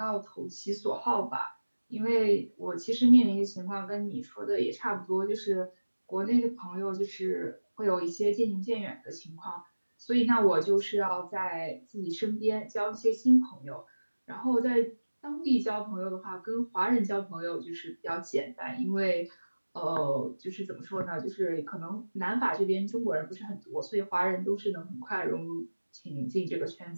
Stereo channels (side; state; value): both; inverted; correlation -1.00